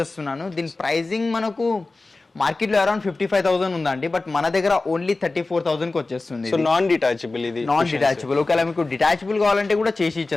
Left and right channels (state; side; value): quieter; right; 3.4 dB